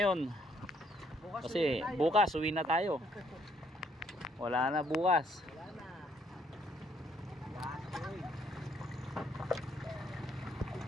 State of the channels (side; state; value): both; normal; correlation 0.68